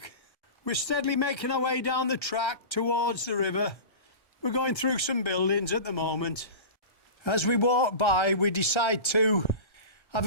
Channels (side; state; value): right; late; 1.3 ms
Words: We're steadily making our way down the track towards the river. We're going through some buildings at the moment. As we walk by, we decide to